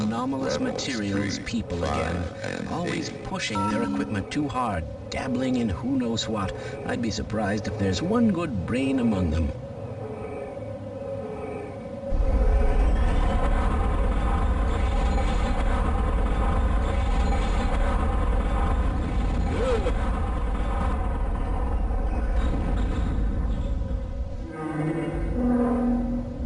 materials people again, always pushing their equipment too hard, dabbling in who knows what. I'd be surprised if there's one good brain among them.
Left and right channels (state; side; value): identical; both; correlation 1.00